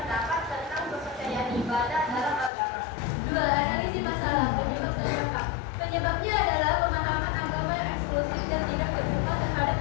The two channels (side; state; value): right; drops out; at 2.5 s